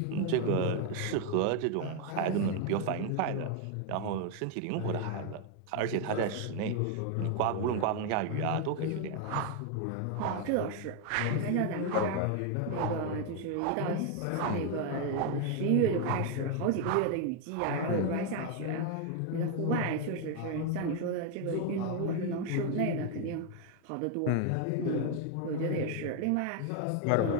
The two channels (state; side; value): different; both; correlation 0.01